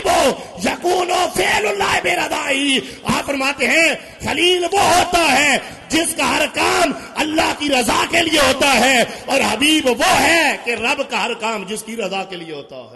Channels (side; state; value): both; identical; correlation 1.00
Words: یکون فعل اللہ برضاہ۔ آپ فرماتے ہیں خلیل وہ ہوتا ہے جس کا ہر کام اللہ کی رضا کے لیے ہوتا ہے، اور حبیب وہ ہے کہ رب کا ہر کام جس کی رضا کے لیے ہوتا